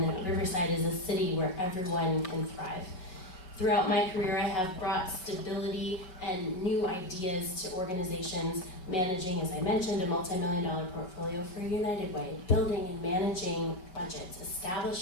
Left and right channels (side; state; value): right; late; 5.4 ms